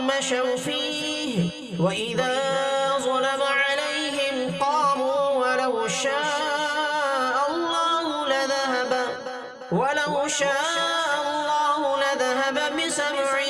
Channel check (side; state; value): both; identical; correlation 1.00